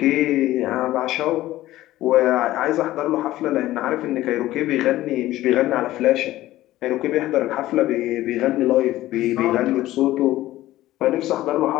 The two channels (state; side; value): quieter; right; 15.6 dB